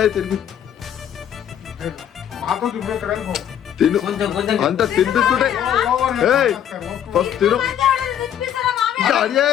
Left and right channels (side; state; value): right; quieter; 9.8 dB